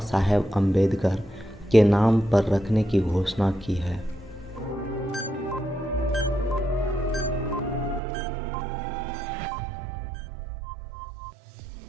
साहेब अम्बेडकर के नाम पर रखने की घोषणा की है?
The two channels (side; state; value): left; drops out; at 8.0 s